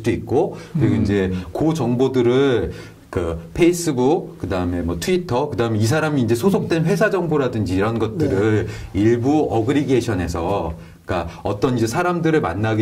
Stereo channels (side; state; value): both; identical; correlation 1.00